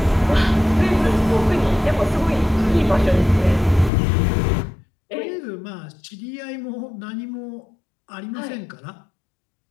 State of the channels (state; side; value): drops out; right; at 3.9 s